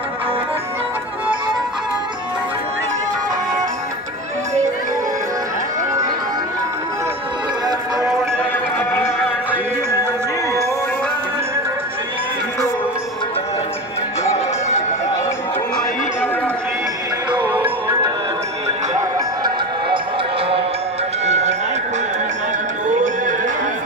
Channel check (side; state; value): both; normal; correlation 0.26